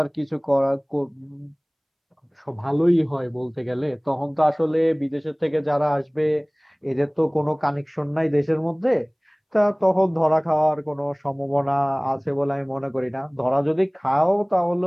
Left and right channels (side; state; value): both; identical; correlation 1.00